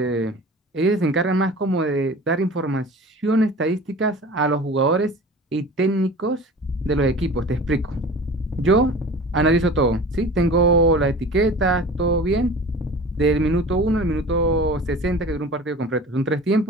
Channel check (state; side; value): normal; both; correlation 0.39